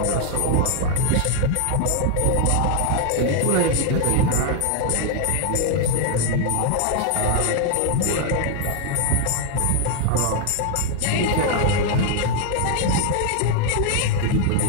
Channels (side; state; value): both; different; correlation 0.00